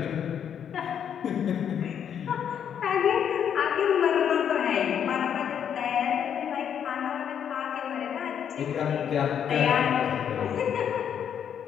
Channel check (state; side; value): quieter; right; 8.6 dB